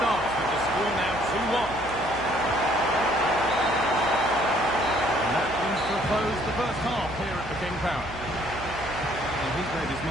with the score now 2-1. And that brings to a close the first half here at the King Power. He's made his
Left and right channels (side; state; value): right; noise; hum, 14 dB below the sound